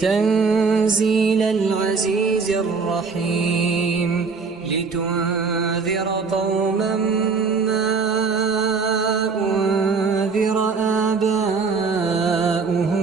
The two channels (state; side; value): quieter; left; 4.8 dB